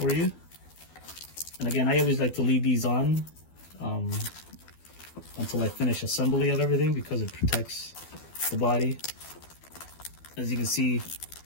you. And again, I always like to leave these on until I finish assembly of everything because it protects the body. As you can see,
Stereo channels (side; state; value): right; late; 12 ms